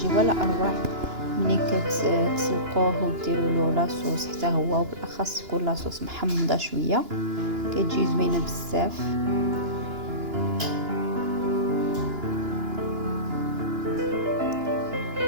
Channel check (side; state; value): left; late; 2.9 ms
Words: ولا اروع ملي كتسلقوه وديروا له لاصوص حتى هو، وبالاخص يكون لاصوص محمضه شويه، كتجي زوينه بزاف.